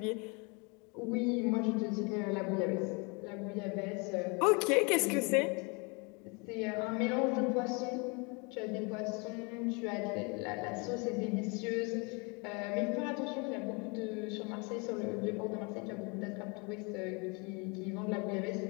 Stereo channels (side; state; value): right; quieter; 31.2 dB